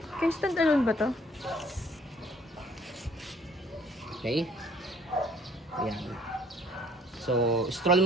Kaya stand alone ba to? Okay? Ayan. So, stroll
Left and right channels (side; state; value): both; normal; correlation 0.58